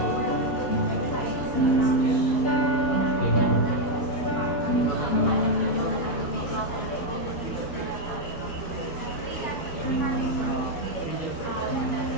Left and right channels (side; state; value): right; late; 12 ms